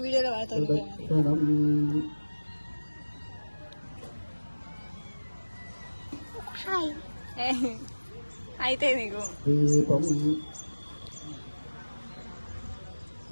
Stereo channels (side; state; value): both; inverted; correlation -1.00